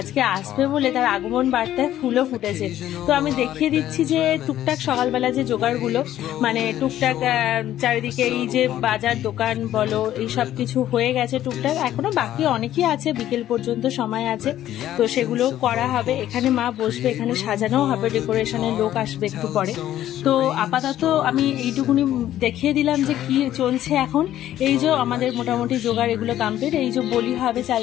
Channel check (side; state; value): right; quieter; 12.5 dB